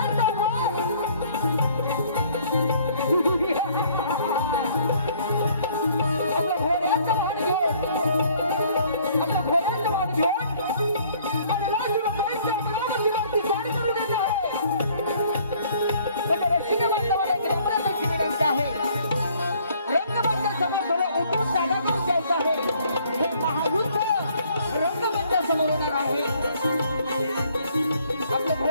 तर आपल्या घोड्याचं वाहन घेऊन आणि राजूबाईंच्या अमरावतीवरती स्वारी करून येत आहे. म्हणजे रसिक बांधवाला एक रंगराजाची विनंती आहे. रंगबांधा समोर थोडं उतरून जागा करून द्यायचं आहे. हे महायुद्ध आहे आपलं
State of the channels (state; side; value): inverted; both; correlation -0.61